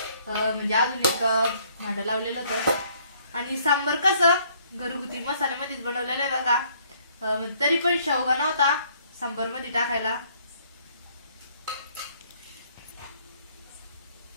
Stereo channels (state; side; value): inverted; both; correlation -0.64